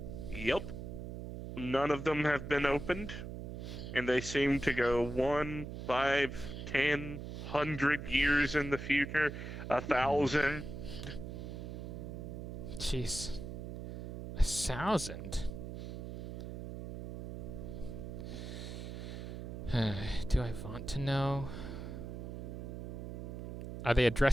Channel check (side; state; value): right; noise; hum, 7 dB below the sound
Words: Yep. None of them have been opened, and they seem to go 1, 5, 10, 100 years in the future, 1,000. Jeez. 1,000? Do I want to know? Are they